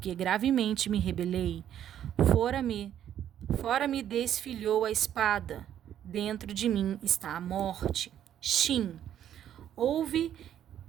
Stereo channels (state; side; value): quieter; left; 10.5 dB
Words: gravemente me rebelei. Fora me desfilhou a espada, dentro de mim está a morte. Shin, Ouve